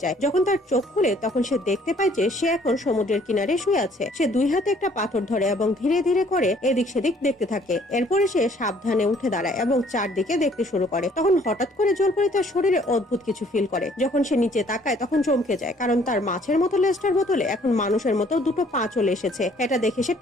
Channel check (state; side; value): normal; both; correlation 0.60